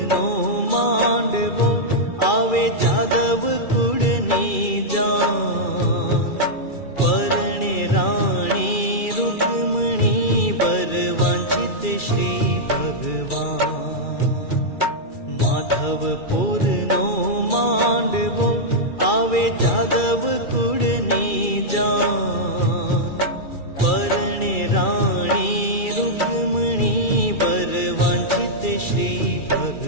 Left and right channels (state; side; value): late; right; 2.3 ms